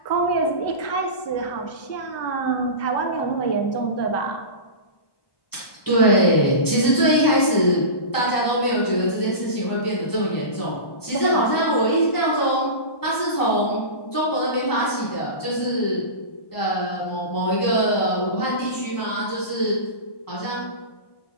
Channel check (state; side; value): late; right; 1.1 ms